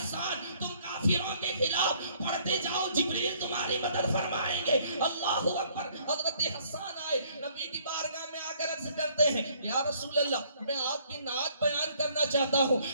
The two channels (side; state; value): both; inverted; correlation -0.62